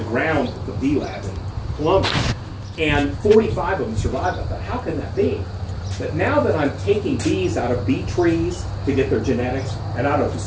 ground at the bee lab in Columbus, And 45 of them survived. I thought, how can that be? But now that I'm taking bees out of bee trees to get their genetics and out of the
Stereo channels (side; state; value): both; identical; correlation 1.00